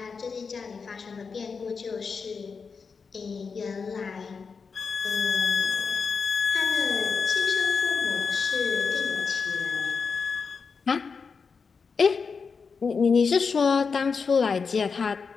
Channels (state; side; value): quieter; right; 5.3 dB